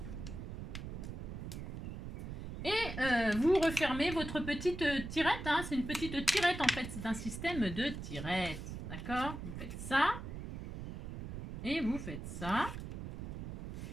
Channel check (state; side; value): noise; right; rumble, 7 dB below the sound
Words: et vous refermez votre petite tirette. Hein, c'est une petite tirette en fait. C'est un système de tirette. D'accord? Vous faites ça. Et vous faites ça.